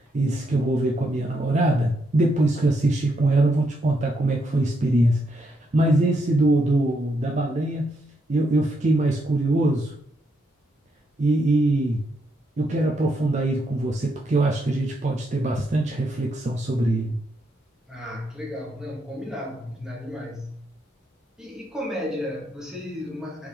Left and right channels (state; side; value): normal; both; correlation 0.78